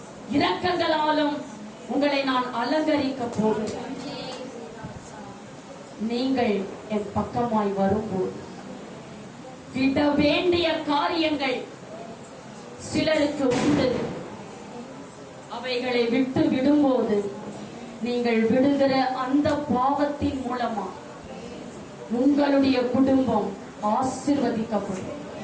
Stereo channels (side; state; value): both; identical; correlation 1.00